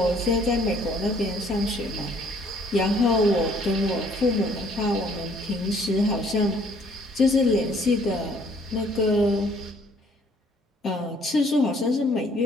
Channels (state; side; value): normal; both; correlation 0.61